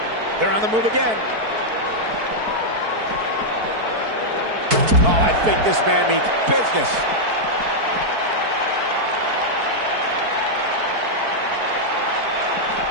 They're on the move again. Oh, I think this man means business.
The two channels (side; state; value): left; late; 4.6 ms